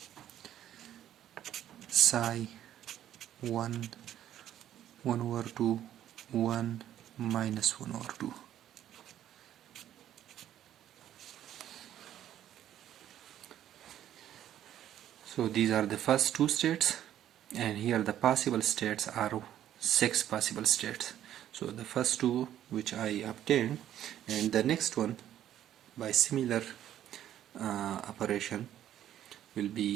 psi 1 over 2 1 minus 1 over 2. So these are the first two states, and here the possible states are 6 possible states. So the first two which I obtained, and the next one by similar operation will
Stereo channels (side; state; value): left; quieter; 11.5 dB